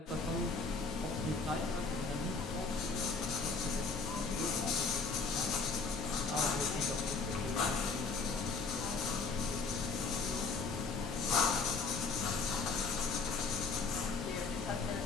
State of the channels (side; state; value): right; quieter; 4.4 dB